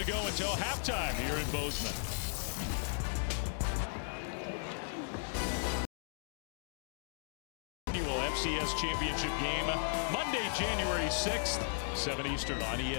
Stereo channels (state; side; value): silent; right; digital silence